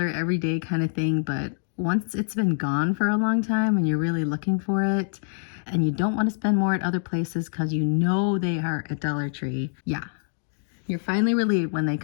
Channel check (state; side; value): silent; right; digital silence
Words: everyday kind of thing, but once it's been gone for a long time and you're really looking for it and you don't want to spend more at other places because you know they are at Dollar Tree, yeah, you're finally relieved when they